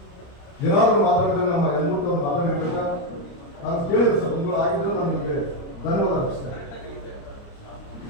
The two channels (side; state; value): right; late; 29 ms